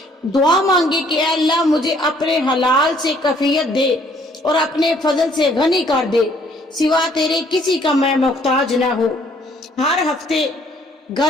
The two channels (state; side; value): normal; both; correlation 0.62